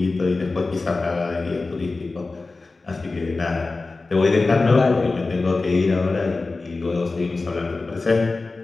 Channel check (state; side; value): quieter; right; 3.6 dB